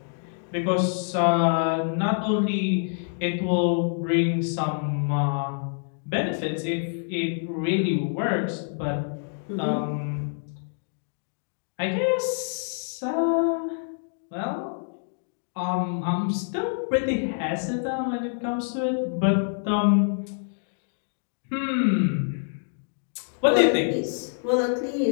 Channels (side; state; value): right; silent; digital silence